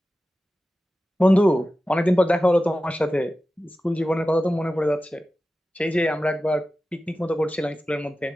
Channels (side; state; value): both; normal; correlation 0.94